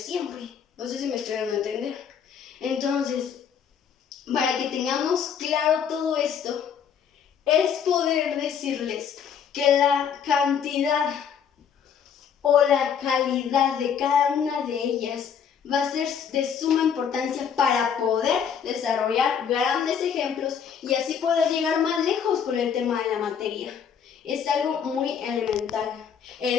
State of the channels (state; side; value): quieter; right; 7.6 dB